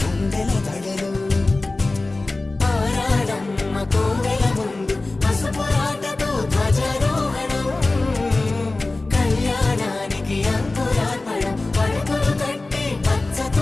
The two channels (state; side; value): quieter; right; 3.2 dB